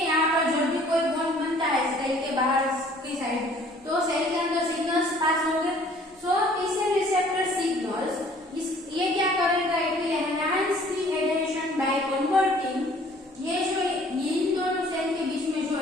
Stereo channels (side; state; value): both; normal; correlation 0.55